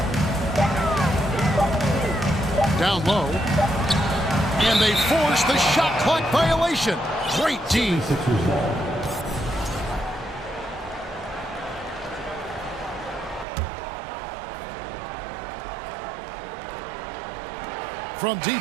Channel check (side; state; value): left; drops out; at 13.5 s